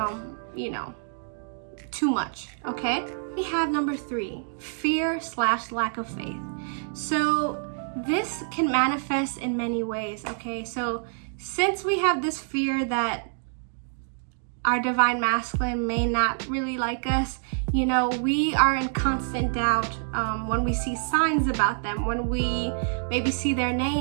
too much, okay? We have number 3, fear/lack of faith. So this can manifest in many ways, okay? So since we have this fear that our divine masculine may not really like us, we are in constant doubt when we see signs about them, when we maybe see their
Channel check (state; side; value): silent; left; digital silence